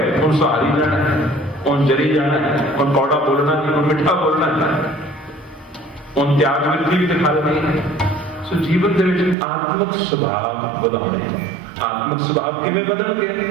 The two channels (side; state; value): left; drops out; at 9.3 s